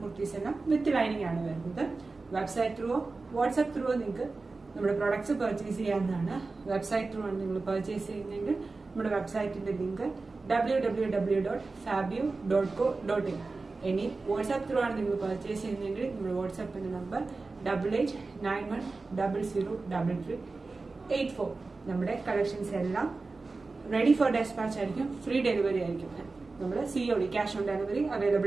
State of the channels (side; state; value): left; quieter; 3.7 dB